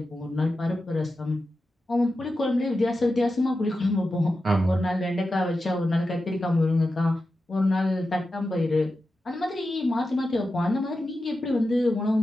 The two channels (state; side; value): normal; both; correlation 0.91